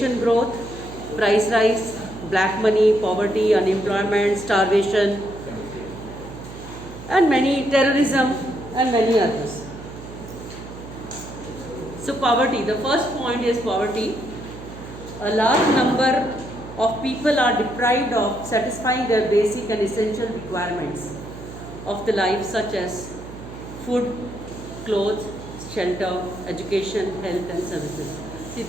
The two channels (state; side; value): noise; right; hum, 13 dB below the sound